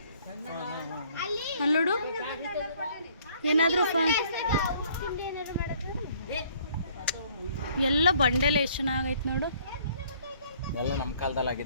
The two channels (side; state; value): both; inverted; correlation -0.60